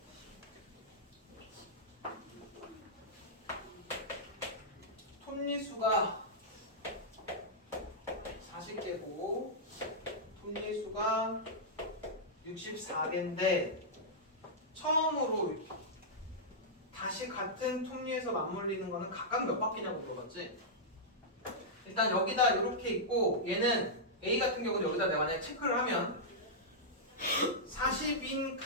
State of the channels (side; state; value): both; normal; correlation -0.10